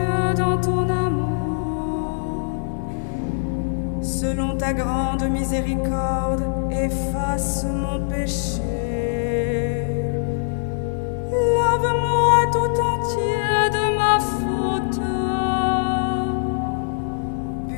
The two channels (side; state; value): right; silent; digital silence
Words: dans ton amour. Selon ta grande miséricorde, efface mon péché. Lave-moi tout entier de ma faute.